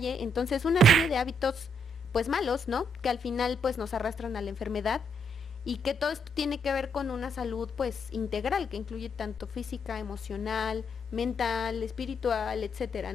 Entonces una serie de hábitos pues malos, ¿no? Que al final pues nos arrastran a la enfermedad y que todo esto tiene que ver con una salud pues integral que incluye tanto física, emocional, mental, espiritual, etcétera,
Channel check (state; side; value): normal; both; correlation 0.75